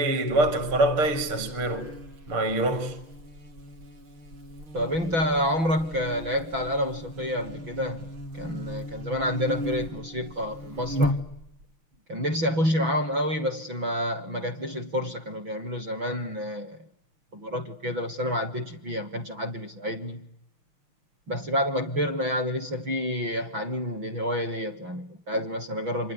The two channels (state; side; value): late; left; 6.1 ms